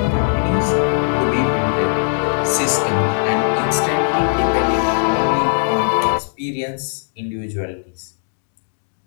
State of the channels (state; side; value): silent; right; digital silence